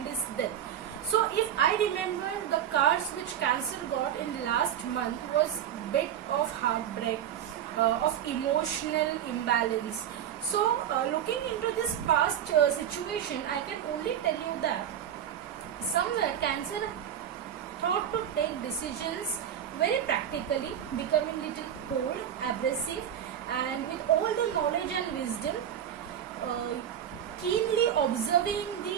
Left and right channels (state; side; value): quieter; left; 9.9 dB